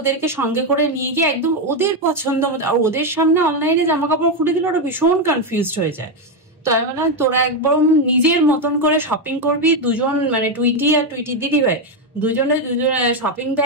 সঙ্গে করে নিয়ে গিয়ে একদম ওদের পছন্দ মতো, আর ওদের সামনে অনলাইনে জামা কাপড় খুলে দিলে ওরা ভীষণ কনফিউজড হয়ে যায়। তো আমি বললাম তোরা একবার নিজের মতন করে শপিং করবি, দুজন মানে টুইটি আর টুইটির দিদি ভাই দুজনে শপিং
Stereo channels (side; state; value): both; normal; correlation 0.07